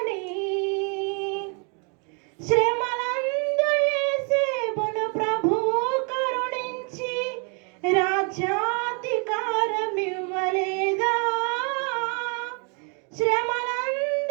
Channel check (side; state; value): left; quieter; 37.1 dB